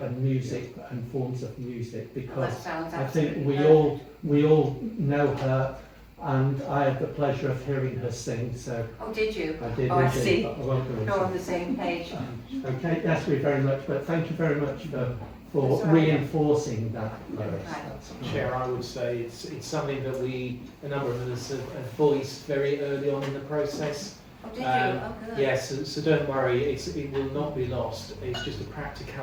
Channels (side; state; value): both; identical; correlation 1.00